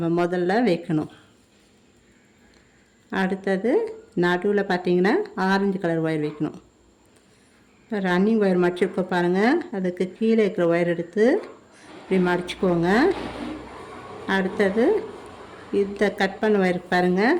முதல்ல வைக்கணும். அடுத்தது நடுவில் பார்த்தீங்கன்னா ஆரஞ்சு கலர் ஒயர் வைக்கணும். இப்போ ரன்னிங் ஒயர் மடிச்சுக்கோ பாருங்கள், அதுக்கு கீழே இருக்கிற ஒயர் எடுத்து இப்படி மடிச்சுக்கோங்க. அடுத்தது இந்த கட் பண்ண ஒயர்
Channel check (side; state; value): both; identical; correlation 1.00